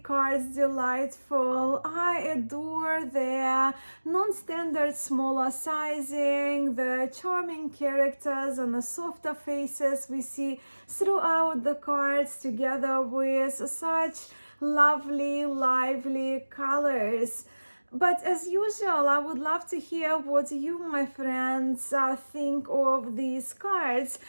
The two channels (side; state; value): both; inverted; correlation -1.00